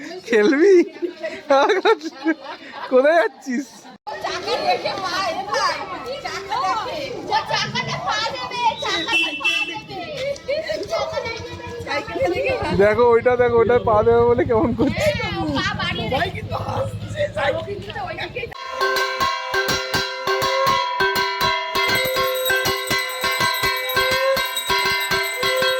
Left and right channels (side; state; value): both; identical; correlation 1.00